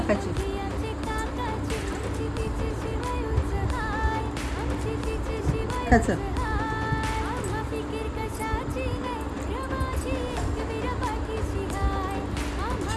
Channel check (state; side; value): identical; both; correlation 1.00